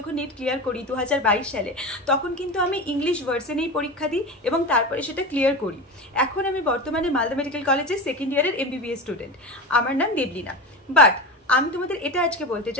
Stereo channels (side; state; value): both; normal; correlation 0.25